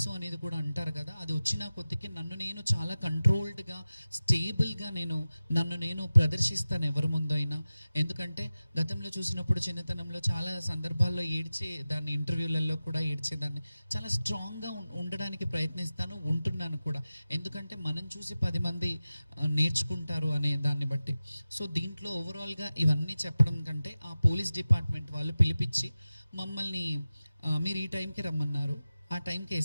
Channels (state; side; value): inverted; both; correlation -0.95